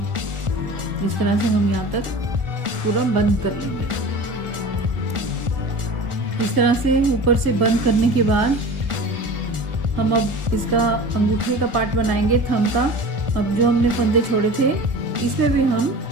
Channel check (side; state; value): left; late; 1.4 ms